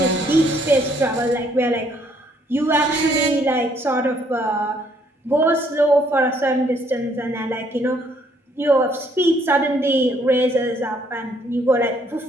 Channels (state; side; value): normal; both; correlation 0.66